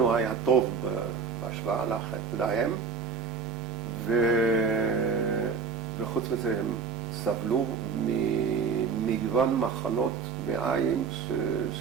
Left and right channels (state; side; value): quieter; left; 5.6 dB